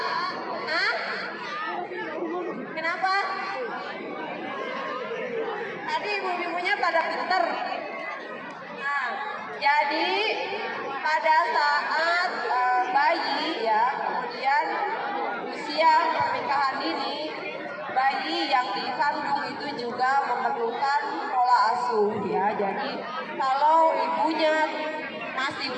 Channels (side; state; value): both; identical; correlation 1.00